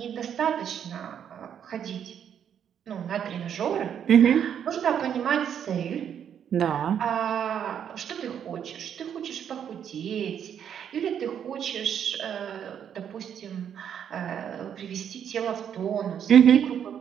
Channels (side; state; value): left; quieter; 8.7 dB